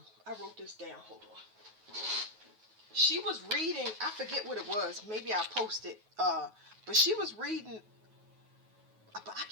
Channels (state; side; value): late; left; 9.3 ms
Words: wrote this down. Hold on. She was reading. I forget what it was. Maybe I posted. But she was reading. But I